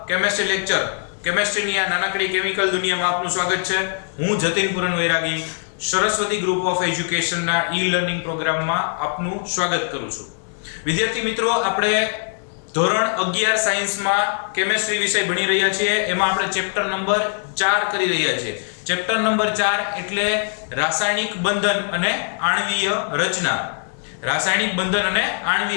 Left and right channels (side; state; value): right; silent; digital silence